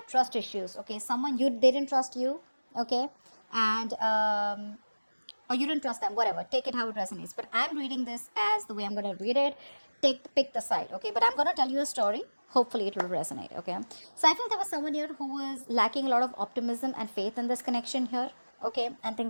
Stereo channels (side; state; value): both; inverted; correlation -1.00